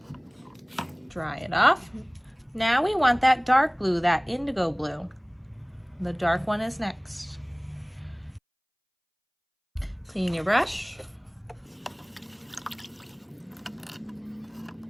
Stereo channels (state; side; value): identical; both; correlation 1.00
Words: Dry it off. Now we want that dark blue, that indigo blue. The dark one is next. Clean your brush.